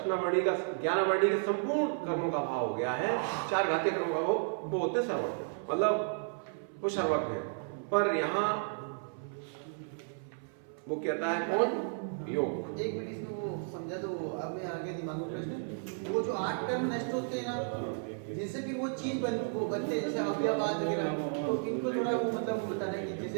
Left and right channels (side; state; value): left; silent; 56 dB below the other